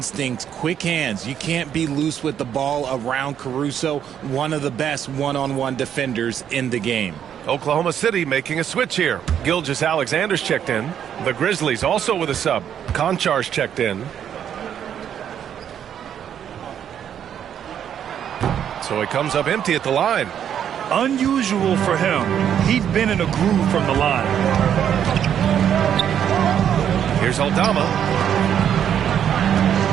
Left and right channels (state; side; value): quieter; left; 9.2 dB